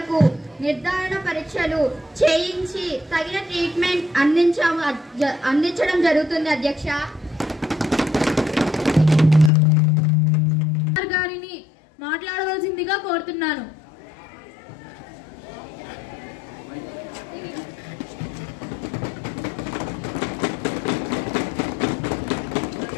నిర్ధారణ పరీక్షలు చేయించి తగిన ట్రీట్మెంట్ అందించడం జరుగుతుంది. అధ్యక్ష, గారిని మాట్లాడవలసిందిగా కోరుతున్నాను.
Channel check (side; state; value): right; drops out; at 9.5 s